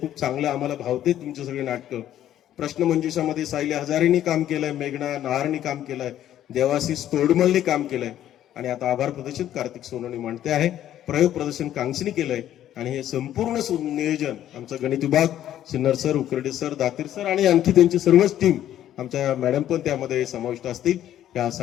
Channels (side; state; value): right; quieter; 11.7 dB